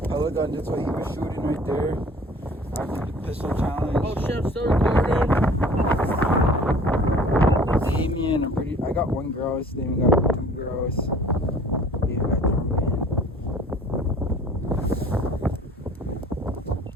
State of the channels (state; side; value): normal; both; correlation 0.49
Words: Pellet gun, that's what he was shooting right there. After the pistol challenge. Oh shit, I'm still recording. Damien, I got 1 grouse. Damien got 2 grouse. Damien got ptarmigan.